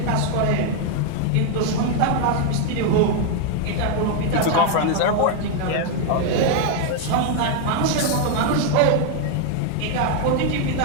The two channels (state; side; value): different; both; correlation 0.01